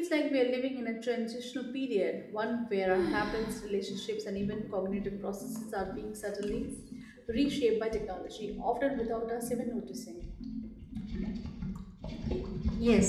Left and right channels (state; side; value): identical; both; correlation 1.00